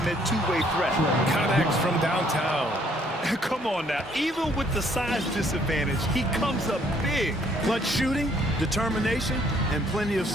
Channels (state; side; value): normal; both; correlation 0.65